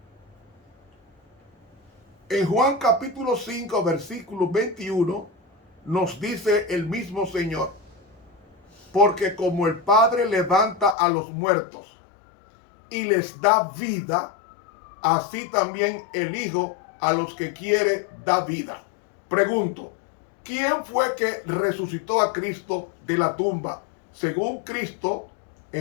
En Juan capítulo 5, versículo 21, nos dice el mismo Señor: porque como el Padre levanta a los muertos y les da vida, así también el Hijo a los que quiere da vida. Pregunto, ¿quién fue que resucitó a Cristo de la tumba? Según Cristo,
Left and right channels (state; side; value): drops out; right; at 11.0 s